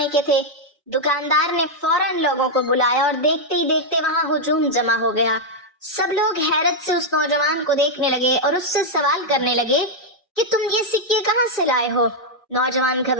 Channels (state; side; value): normal; both; correlation -0.02